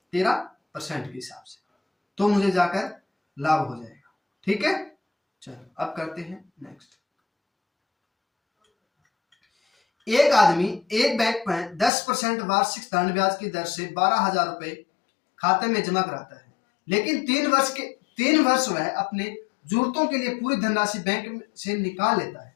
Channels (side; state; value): right; drops out; at 11.9 s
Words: 13% के हिसाब से, तो मुझे जाकर लाभ हो जाएगा, ठीक है। चलो अब करते हैं नेक्स्ट। एक आदमी एक बैंक में 10% वार्षिक साधारण ब्याज की दर से 12,000 रुपए खाते में जमा कराता है, लेकिन 3 वर्ष वह अपने जरूरतों के लिए पूरी धनराशि बैंक से निकाल लेता है।